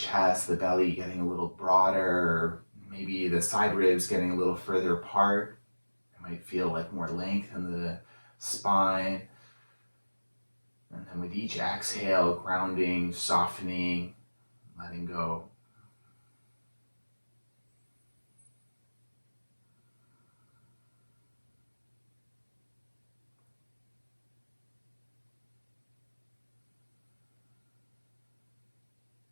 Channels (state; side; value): inverted; both; correlation -1.00